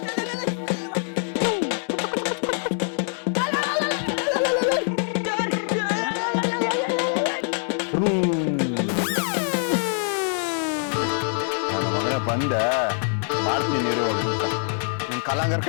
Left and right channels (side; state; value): right; silent; digital silence